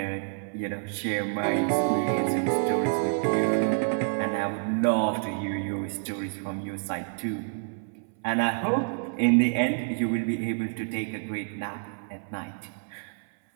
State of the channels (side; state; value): left; silent; 59 dB below the other